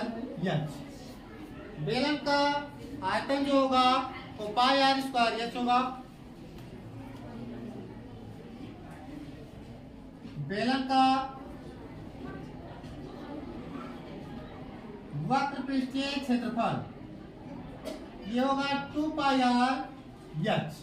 बेलन का आयतन जो होगा वो πr²h होगा। बेलन का वक्र पृष्ठीय क्षेत्रफल ये होगा 2πr(h),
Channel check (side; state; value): both; identical; correlation 1.00